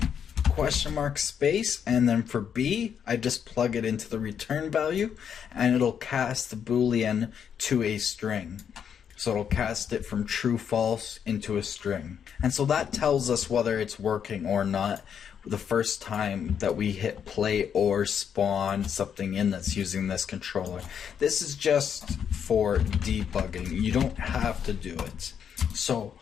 question mark space, and then for B I just plug it into the return value and it'll cast the boolean to a string. So it'll cast it from true false into a string. And so that tells us whether it's working or not the first time that we hit play or spawn something in that's using this controller. This is just for debugging. You don't have to do it. So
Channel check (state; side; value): quieter; right; 8.0 dB